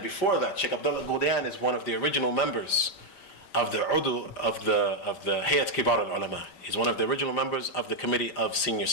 before that, Shaykh Abdullaah al Ghudayan is one of the original members of the Udu of the Hayat Kibar al-Ulama. He's one of the original members of the Committee of Senior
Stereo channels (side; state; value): right; late; 5.3 ms